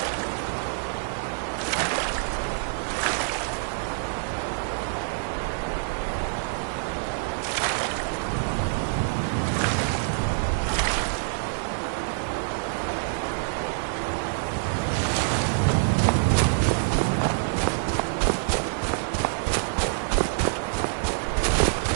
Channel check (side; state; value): left; silent; 55 dB below the other